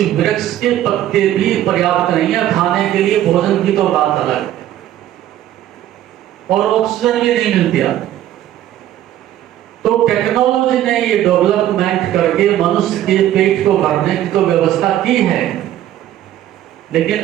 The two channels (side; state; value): left; quieter; 12.5 dB